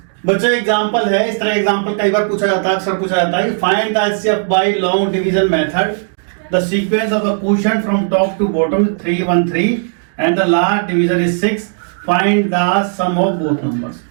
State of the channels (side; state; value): left; silent; digital silence